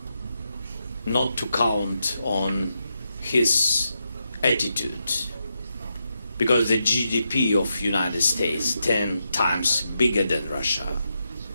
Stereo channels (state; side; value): inverted; both; correlation -0.85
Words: not to count on his attitude. Because the GDP of United States 10 times bigger than Russia.